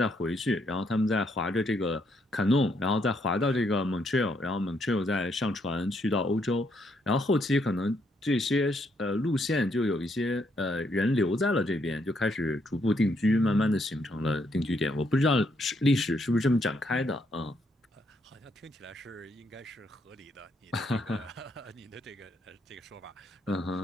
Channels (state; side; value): normal; both; correlation 0.74